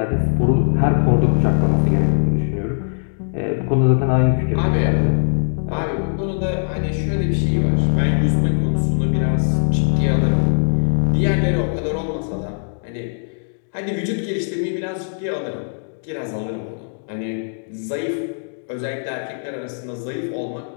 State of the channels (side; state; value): right; silent; digital silence